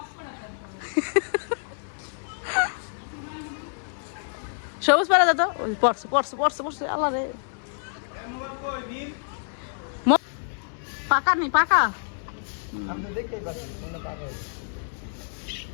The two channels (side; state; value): right; silent; 60 dB below the other